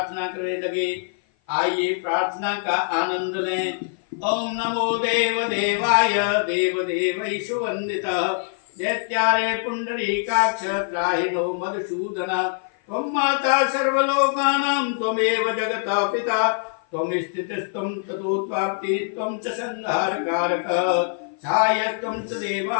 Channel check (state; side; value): silent; right; 55 dB below the other